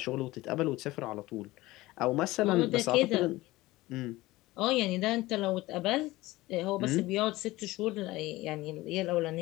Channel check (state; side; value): quieter; right; 18.8 dB